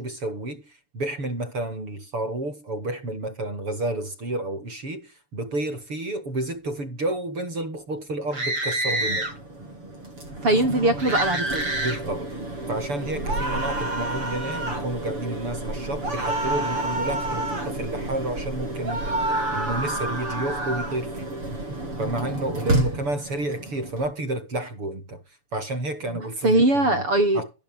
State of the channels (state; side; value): late; left; 7.0 ms